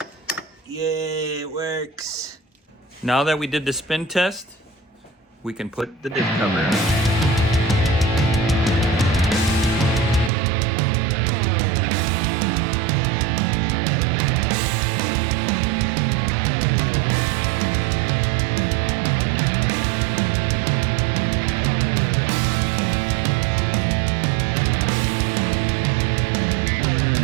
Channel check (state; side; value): drops out; left; at 10.3 s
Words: Yay, it works. Now that we did the spin test, we can put the diff cover on.